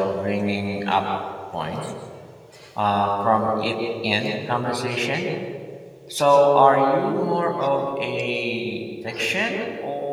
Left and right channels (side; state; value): both; identical; correlation 1.00